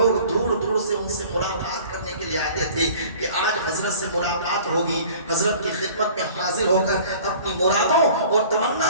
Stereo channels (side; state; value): both; inverted; correlation -0.47